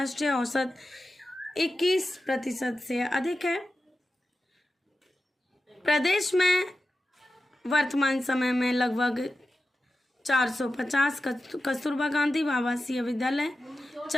औसत 21% से अधिक है। प्रदेश में वर्तमान समय में लगभग 450 कस्तूरबा गांधी आवासीय विद्यालय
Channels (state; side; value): normal; both; correlation 0.93